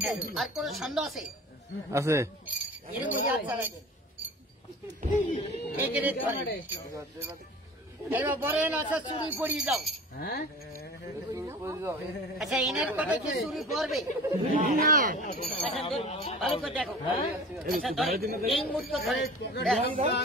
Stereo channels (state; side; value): normal; both; correlation 0.39